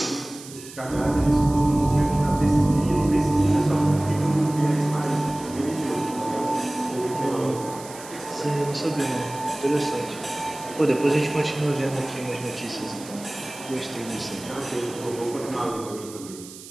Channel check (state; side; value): noise; right; hiss, 16 dB below the sound